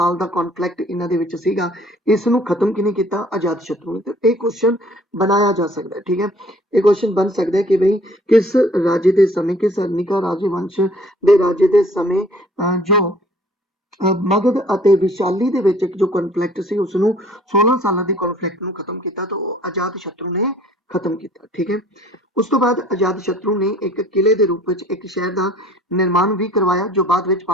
ਦਾ ਕੌਨਫਲਿਕਟ ਇਹਨਾਂ ਦੇ ਵਿੱਚ ਸੀਗਾ, ਇਸ ਨੂੰ ਖਤਮ ਕਿਹਨੇ ਕੀਤਾ? ਅਜਾਤ ਸ਼ਤਰੂ ਨੇ। ਤੇ ਇਹ ਕੁਐਸਚਨ ਬਣਾਇਆ ਜਾ ਸਕਦਾ ਹੈ, ਠੀਕ ਹੈ, ਇਹ ਕੁਐਸਚਨ ਬਣ ਸਕਦਾ ਹੈ ਕਿ ਬਈ ਕਿਸ ਰਾਜੇ ਦੇ ਸਮੇਂ, ਕਿਸ ਹਰਨਿਕਾ ਰਾਜਵੰਸ਼ ਦੇ ਰਾਜੇ ਦੇ ਸਮੇਂ ਜੋ ਮਗਧ ਅਤੇ ਵਿਸ਼ਾਲੀ ਦੇ ਵਿੱਚ ਇੱਕ ਜੋ ਕਨਫਲਿਕਟ ਸੀ ਉਸਨੂੰ 16 ਸਾਲਾਂ ਦੀ ਕਨਫਲਿਕਟ ਨੂੰ ਖਤਮ ਕੀਤਾ, ਤਾਂ ਉਹ ਅਜਾਤ ਸ਼ਤਰੂ ਨੇ ਖਤਮ ਕੀਤਾ, ਠੀਕ ਹੈ। ਉਸ ਤੋਂ ਬਾਅਦ ਅਜਾਤ ਸ਼ਤਰੂ ਨੇ ਇੱਕ ਕਿਲੇ ਦੇ ਰੂਪ ਵਿੱਚ ਇੱਕ ਸ਼ਹਿਰ ਦਾ ਨਿਰਮਾਣ ਵੀ ਕਰਵਾਇਆ ਜੋ ਬਾਅਦ ਵਿੱਚ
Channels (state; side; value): normal; both; correlation 0.55